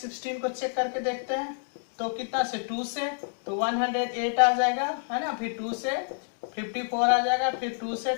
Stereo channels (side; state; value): right; silent; digital silence